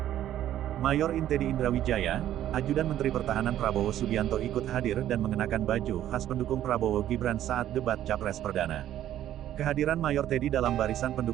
Mayor Teddy Indrawijaya, ajudan Menteri Pertahanan Prabowo Subianto ikut hadir dan mengenakan baju khas pendukung Prabowo Gibran saat debat Capres Perdana. Kehadiran Mayor Teddy dalam barisan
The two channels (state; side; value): quieter; left; 12.1 dB